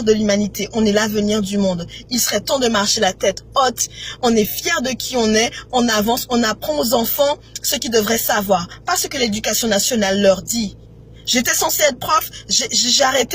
de l'humanité, on est l'avenir du monde. Il serait temps de marcher la tête haute. On est fiers de qui on est, on avance, on apprend aux enfants ce qu'ils devraient savoir. Pas ce que l'éducation nationale leur dit. J'étais censée être prof, j'ai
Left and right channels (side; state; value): both; identical; correlation 1.00